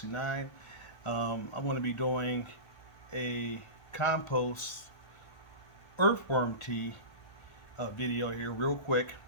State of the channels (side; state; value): right; late; 1.3 ms